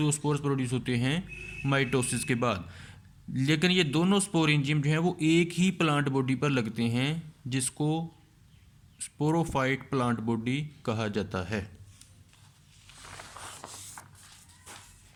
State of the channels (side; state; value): both; identical; correlation 1.00